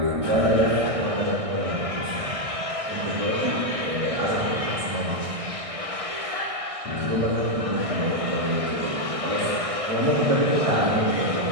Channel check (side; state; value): left; late; 1.6 ms